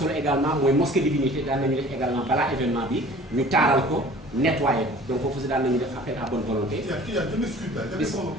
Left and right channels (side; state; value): both; normal; correlation 0.47